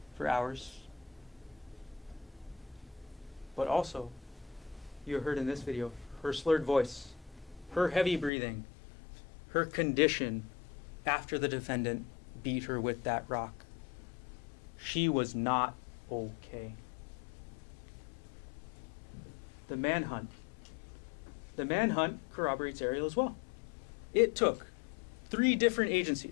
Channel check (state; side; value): drops out; right; at 8.3 s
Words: for hours. But also, you heard in this video her slurred voice, her heavy breathing, her condition after the defendant beat her with that rock. She was not okay. The manhunt. The manhunt corroborates Ariel as well. It took 3 different